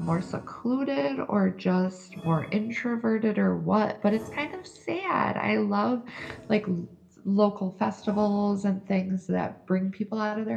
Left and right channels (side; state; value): both; identical; correlation 1.00